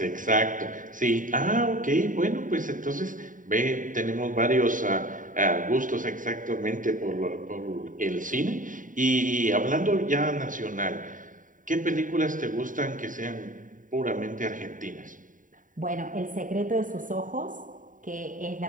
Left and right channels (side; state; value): left; late; 0.38 ms